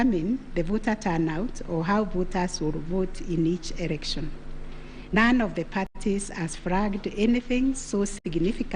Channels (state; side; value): identical; both; correlation 1.00